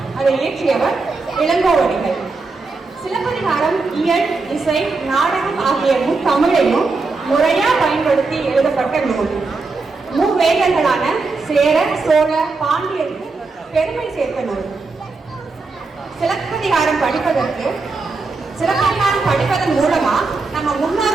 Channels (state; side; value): quieter; left; 3.9 dB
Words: அதை இயற்றியவர் இளங்கோவடிகள். சிலப்பதிகாரம் இயல், இசை, நாடகம் ஆகிய தமிழையும் முறையா பயன்படுத்தி எழுதப்பட்ட நூல். மூவேந்தர்களான சேர, சோழ, பாண்டியருக்கு பெருமை சேர்த்த நூல். சிலப்பதிகாரம் படிப்பதன் மூலமா நம்ம